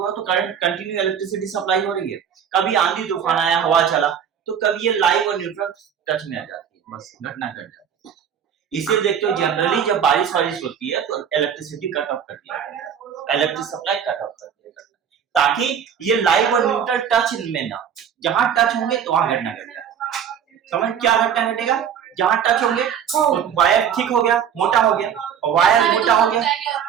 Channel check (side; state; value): left; quieter; 8.3 dB